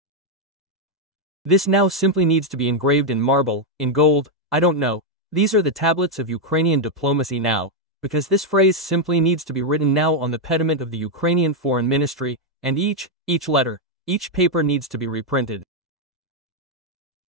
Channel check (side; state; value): both; normal; correlation 0.01